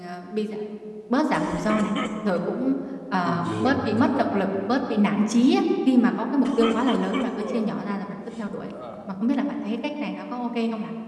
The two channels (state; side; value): identical; both; correlation 1.00